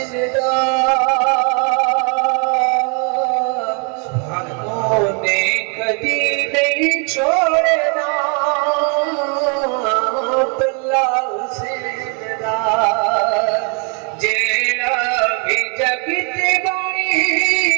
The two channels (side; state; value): left; quieter; 38.0 dB